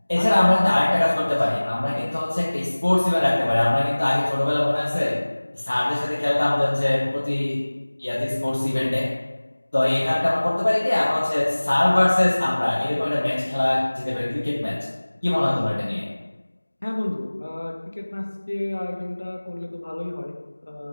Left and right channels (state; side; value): inverted; both; correlation -1.00